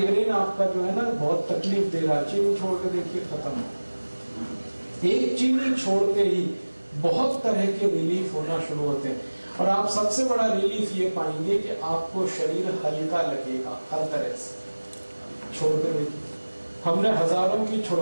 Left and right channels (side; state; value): both; inverted; correlation -1.00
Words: आपका जो है ना बहुत तकलीफ दे रहा है, चीनी छोड़ के देखिए, खत्म हो। एक चीनी छोड़ते ही बहुत तरह के रिलीफ होना शुरू होते हैं, और आप सबसे बड़ा रिलीफ ये पाएंगे कि आपको शरीर हल्का लगेगा हर तरह से। छोड़ के देखिए, हमने हजारों की